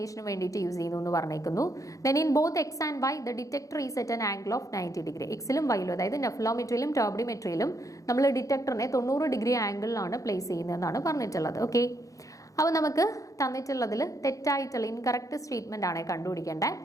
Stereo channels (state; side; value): late; right; 0.16 ms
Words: വേണ്ടിയിട്ട് use ചെയ്യുന്നു എന്ന് പറഞ്ഞേക്കുന്നു. Then in both X and Y the detector is at an angle of 90 degree. എക്സിലും വൈയിലും, അതായത് നെഫ്ലോമെട്രിയിലും ടർബിഡിമെട്രിയിലും നമ്മൾ ഡിറ്റക്ടറിനെ 90 ഡിഗ്രി ആംഗിളിലാണ് പ്ലേസ് ചെയ്യുന്നതെന്നാണ് പറഞ്ഞിട്ടുള്ളത്. ഓക്കെ, അപ്പോൾ നമുക്ക് തന്നിട്ടുള്ളതിൽ തെറ്റായിട്ടുള്ള ഇൻകറക്റ്റ് സ്റ്റേറ്റ്മെന്റ് ആണ് കണ്ടുപിടിക്കേണ്ടത്.